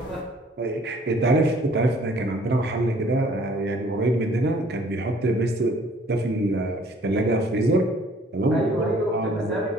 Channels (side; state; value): both; normal; correlation 0.57